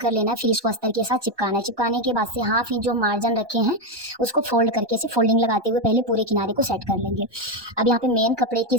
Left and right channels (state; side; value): late; left; 1.2 ms